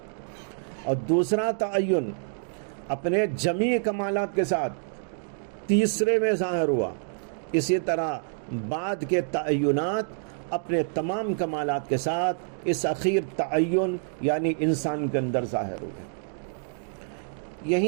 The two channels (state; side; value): silent; left; digital silence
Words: اور دوسرا تعین اپنے جمیع کمالات کے ساتھ تیسرے میں ظاہر ہوا. اسی طرح بعد کے تعینات اپنے تمام کمالات کے ساتھ اس اخیر تعین یعنی انسان کے اندر ظاہر ہوئے.